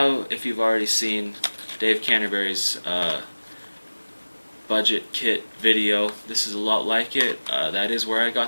if you've already seen Dave Canterbury's budget kit video, this is a lot like it. That is where I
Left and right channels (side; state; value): both; inverted; correlation -1.00